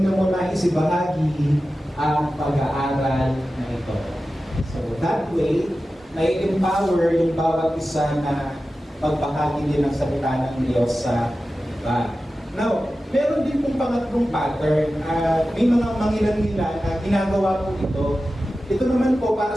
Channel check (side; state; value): both; normal; correlation 0.94